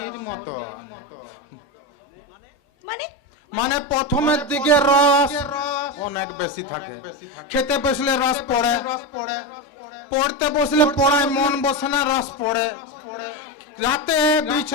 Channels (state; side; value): normal; both; correlation 0.15